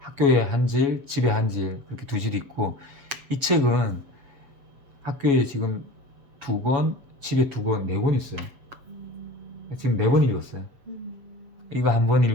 한 질, 집에 한 질, 이렇게 두 질 있고 이 책은 학교에 지금 2권, 집에 2권, 4권 있어요. 지금 4번 읽었어요. 이거 한 번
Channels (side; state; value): left; late; 7.6 ms